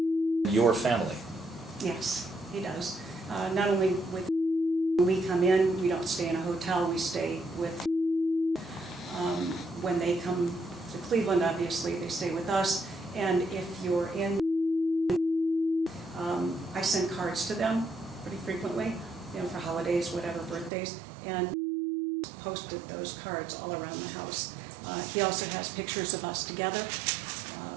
your family? Yes, he does. Not only with, when we come in, we don't stay in a hotel, we stay with, when they come to Cleveland, obviously, they stay with us. And if you're in, I send cards to them pretty frequently, you know, for holidays, whatever, birthdays, and posted those cards all around the house. He also has pictures of us together,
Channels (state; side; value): drops out; left; at 20.7 s